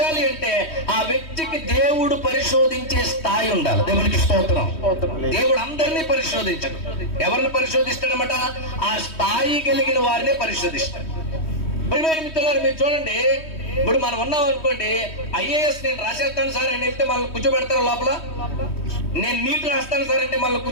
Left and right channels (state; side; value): late; right; 3.2 ms